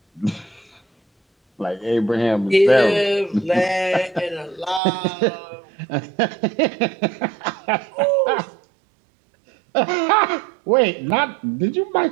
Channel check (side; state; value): left; drops out; at 4.8 s